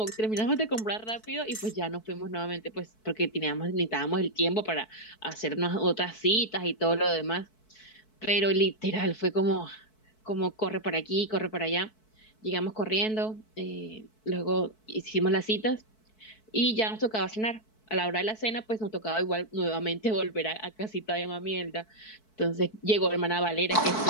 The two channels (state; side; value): late; right; 4.6 ms